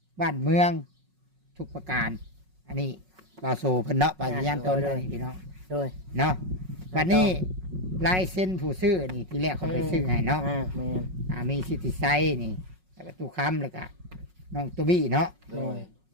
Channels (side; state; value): left; late; 5.4 ms